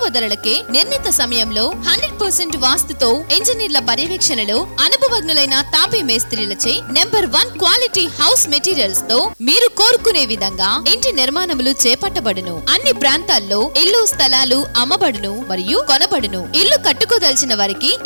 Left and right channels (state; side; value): inverted; both; correlation -1.00